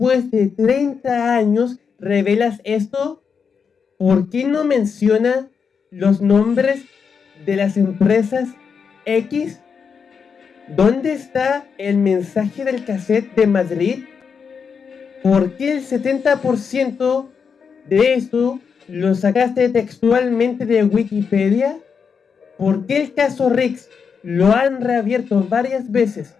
de 30 años, revelas esto? ¿Por qué no menciona los nombres de las empresas X? ¿Dónde está el mensaje del cassette de Madrid? ¿Por qué el 70% de esto lo sacaste textualmente de Wikipedia? ¿Por qué el caso Rix lo han reabierto varias veces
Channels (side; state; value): right; quieter; 6.2 dB